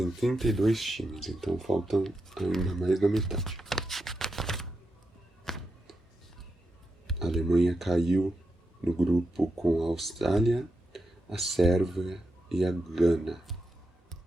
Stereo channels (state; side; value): normal; both; correlation 0.86